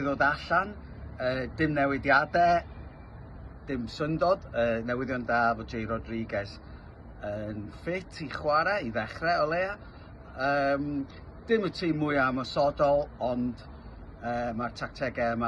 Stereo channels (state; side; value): identical; both; correlation 1.00